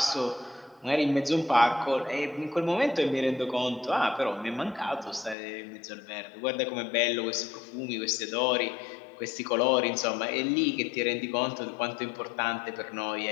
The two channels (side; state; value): right; drops out; at 5.4 s